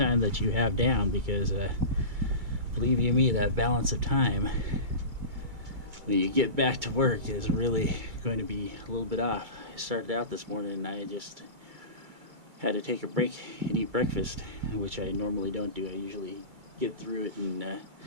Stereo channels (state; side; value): late; left; 2.3 ms